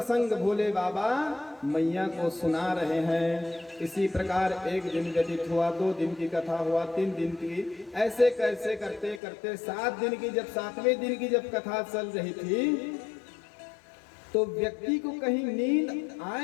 भोले बाबा मैया को सुना रहे हैं। इसी प्रकार एक दिन व्यतीत हुआ, 2 दिन की कथा हुआ, 3 दिन की, ऐसे कैसे करते करते 7 दिन की, जब 7वें दिन की जब कथा चल रही थी, तो व्यक्ति को कहीं नींद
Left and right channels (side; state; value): right; drops out; at 9.2 s